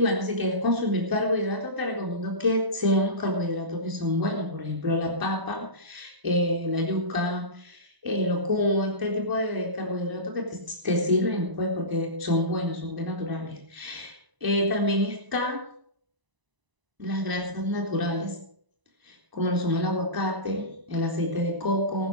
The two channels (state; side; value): late; left; 1.0 ms